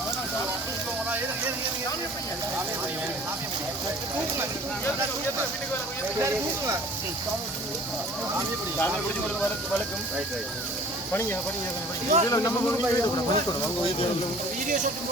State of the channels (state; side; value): normal; both; correlation 0.48